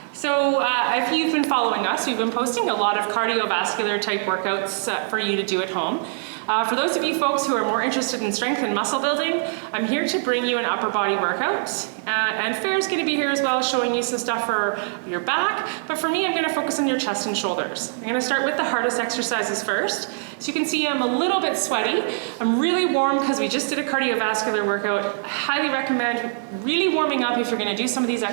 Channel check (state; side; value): silent; left; digital silence